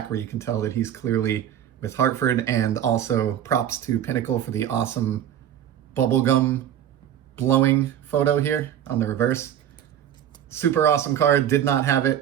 where you can tell that he's clearly with Hartford, and also props to Pinnacle for the awesome bubblegum blowing photo here on the reverse. Super awesome card, did not have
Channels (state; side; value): quieter; left; 10.4 dB